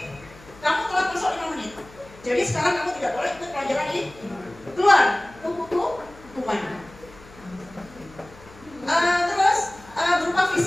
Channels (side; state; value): left; noise; hum, 22 dB below the sound